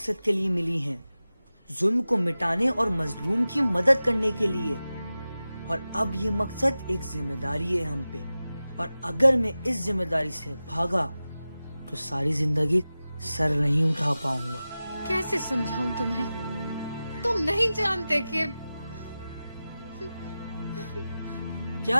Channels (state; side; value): inverted; both; correlation -0.95